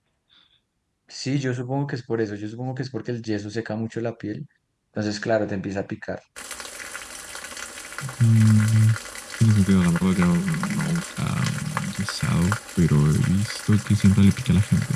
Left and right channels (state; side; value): identical; both; correlation 1.00